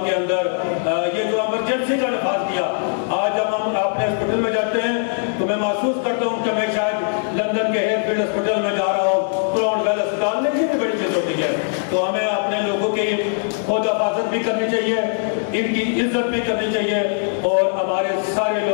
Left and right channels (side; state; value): right; silent; digital silence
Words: کے اندر یہ جو ایمرجنسی کا نفاذ کیا. آج جب ہم اپنے ہاسپٹل میں جاتے ہیں تو میں محسوس کرتا ہوں کہ میں شاید لندن کے ہیئر فیلڈ ہاسپٹل میں جا رہا ہوں کراؤن ویل اسپتال میں یہ بھی بڑی چیز ہوتی ہے. تو ہمیں اپنے لوگوں کی خود حفاظت بھی کرنی چاہیے ان کی عزت بھی کرنی چاہیے اور ہمارے سارے